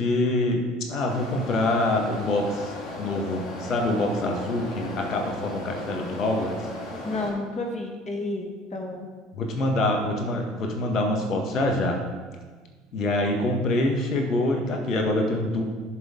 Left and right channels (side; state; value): both; normal; correlation 0.50